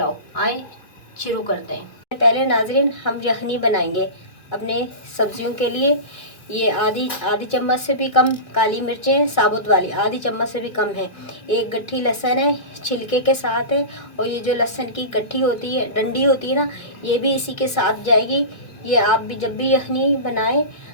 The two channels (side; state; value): right; late; 2.7 ms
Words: आए शुरू करते हैं। पहले नाजरीन हम यखनी बनाएंगे अपने सब्जियों के लिए। ये आधी चम्मच से भी कम काली मिर्चें साबुत वाली, आधी चम्मच से भी कम है। एक गट्ठी लहसुन है, छिलके के साथ है। और ये जो लहसुन की गट्ठी होती है, डंडी होती है ना, ये भी इसी के साथ जाएगी। ये आप भी जब भी यखनी बनाएं